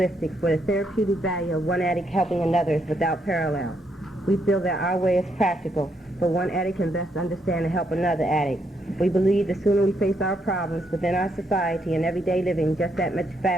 for the therapeutic value of one addict helping another is without parallel. We feel that our way is practical, for one addict can best understand and help another addict. We believe the sooner we face our problems within our society and everyday living, just that much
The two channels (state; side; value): normal; both; correlation 0.76